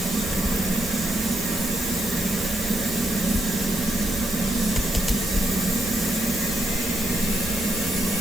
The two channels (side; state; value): both; normal; correlation 0.79